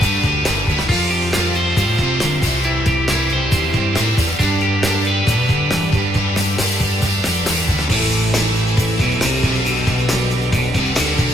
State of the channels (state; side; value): normal; both; correlation 0.75